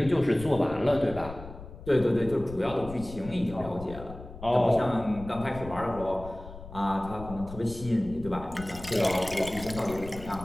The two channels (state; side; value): noise; left; rumble, 13 dB below the sound